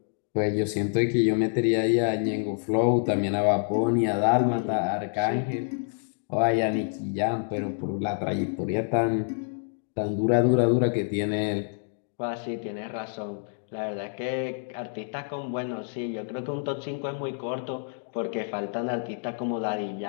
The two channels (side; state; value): right; silent; digital silence